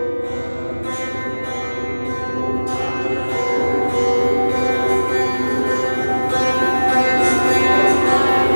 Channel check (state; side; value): inverted; both; correlation -1.00